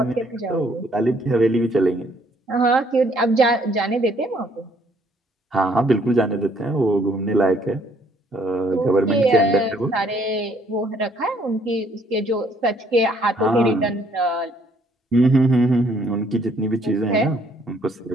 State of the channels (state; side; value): normal; both; correlation 0.65